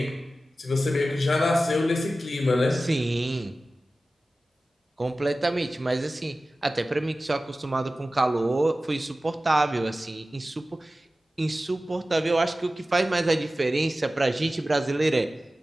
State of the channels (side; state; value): both; normal; correlation 0.95